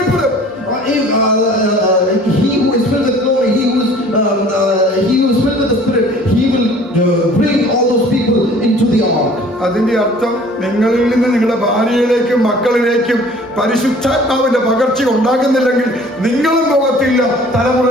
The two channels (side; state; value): both; normal; correlation 0.50